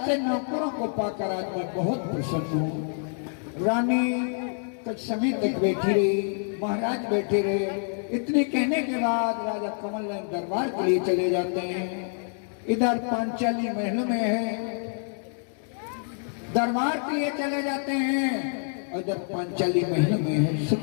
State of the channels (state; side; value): silent; right; 60 dB below the other